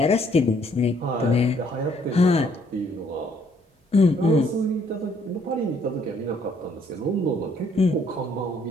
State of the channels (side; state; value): both; normal; correlation 0.65